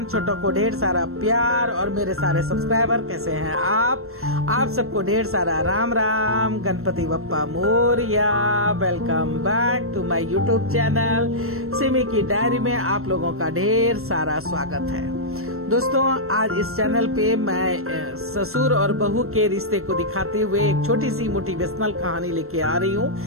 छोटों को ढेर सारा प्यार और मेरे सारे सब्सक्राइबर कैसे हैं आप सबको ढेर सारा Ram Ram, Ganpati Bappa Morya. Welcome back to my YouTube channel Simi की डायरी में आप लोगों का ढेर सारा स्वागत है। दोस्तों, आज इस चैनल पे मैं ससुर और बहू के रिश्ते को दिखाते हुए एक छोटी सी मोटिवेशनल कहानी लेके आ रही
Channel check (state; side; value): late; left; 0.62 ms